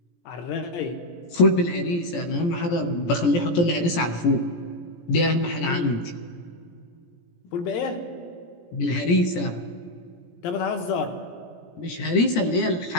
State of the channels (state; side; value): late; right; 17 ms